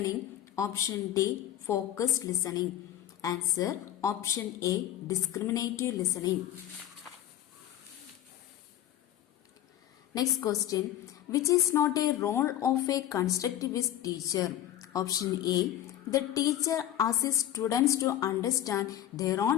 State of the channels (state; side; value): quieter; right; 12.0 dB